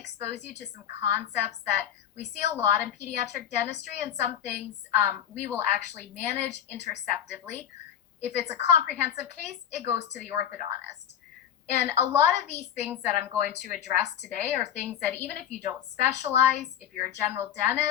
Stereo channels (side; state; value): right; quieter; 9.8 dB